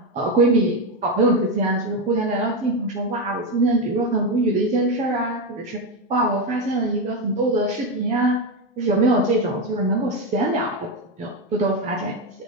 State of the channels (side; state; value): both; normal; correlation 0.10